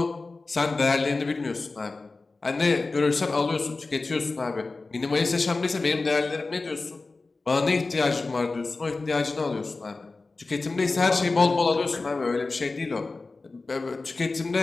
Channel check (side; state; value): right; quieter; 3.6 dB